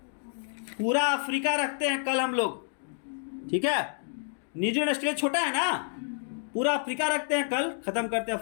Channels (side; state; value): right; silent; digital silence